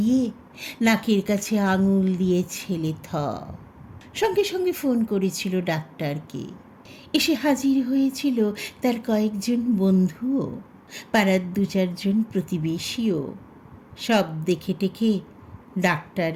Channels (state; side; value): identical; both; correlation 1.00